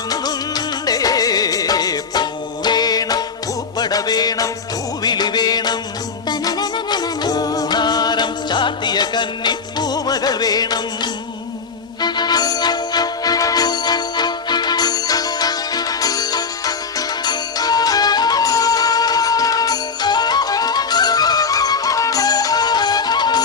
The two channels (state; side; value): quieter; right; 5.2 dB